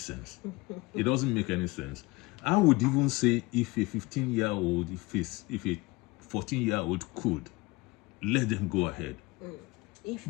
It doesn't make any sense. I would even say if a 15-year-old, if a 14-year-old could, let them go ahead. If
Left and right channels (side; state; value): right; quieter; 23.0 dB